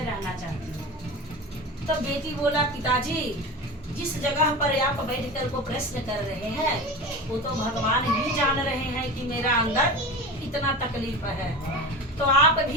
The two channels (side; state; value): both; normal; correlation 0.29